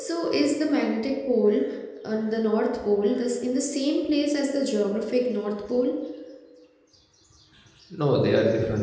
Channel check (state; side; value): identical; both; correlation 1.00